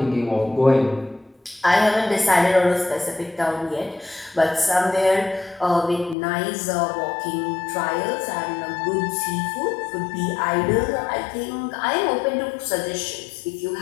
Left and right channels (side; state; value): right; drops out; at 6.2 s